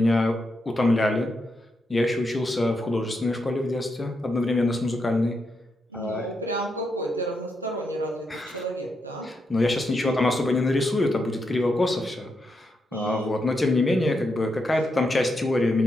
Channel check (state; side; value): normal; both; correlation 0.83